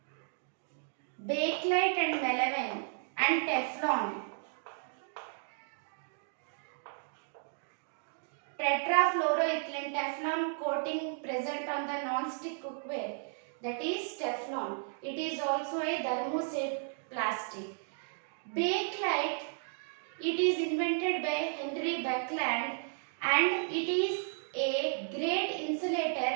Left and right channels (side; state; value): left; silent; digital silence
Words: Bakelite and melamine and Teflon. Tetrafluoroethylene Teflon coating present on the non-stick cookware, that is Teflon. It is also a thermoset plastic. Bakelite, it is invented by Henry Beckland and it is a great insulator